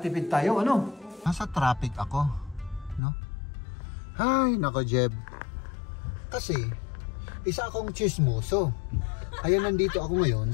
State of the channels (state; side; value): drops out; right; at 3.0 s